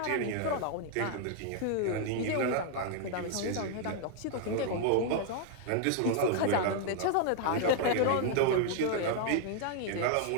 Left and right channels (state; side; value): different; both; correlation 0.00